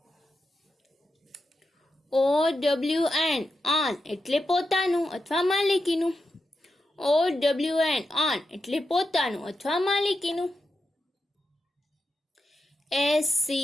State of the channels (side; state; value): both; normal; correlation 0.88